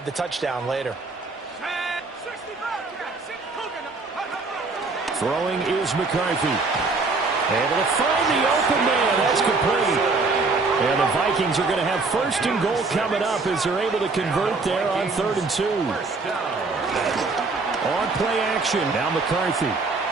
the touchdown later. Throwing is McCarthy. Able to find the open man. That's complete. And the Vikings are going to have 1st and goal coming up as they're able to convert there on 3rd and 2. On play action. Now McCarthy.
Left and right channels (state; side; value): quieter; left; 3.9 dB